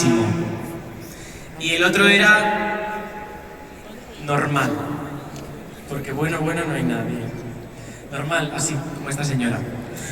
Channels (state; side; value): identical; both; correlation 1.00